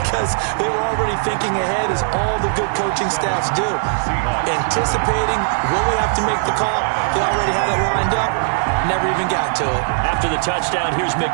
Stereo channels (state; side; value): silent; left; 67 dB below the other